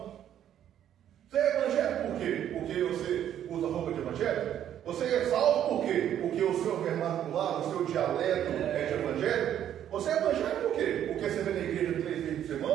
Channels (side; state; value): left; quieter; 10.5 dB